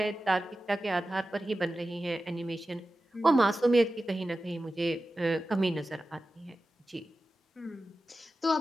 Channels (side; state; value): both; normal; correlation 0.94